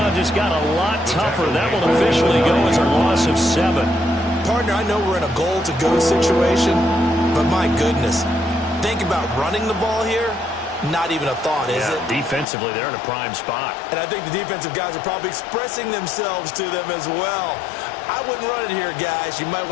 just got a lot tougher. That will officially go as a loss of 7. Partner, I know we're in a goal-to-go situation, but my goodness, think about running the ball here. Not even a thought, is it? Defensively, they're in a prime spot. And I think the defensive guys are probably expressing themselves to them as well. I wouldn't run it here, guys. You might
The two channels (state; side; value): drops out; right; at 12.5 s